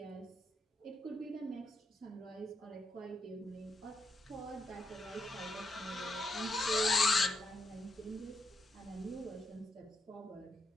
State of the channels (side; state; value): both; normal; correlation 0.82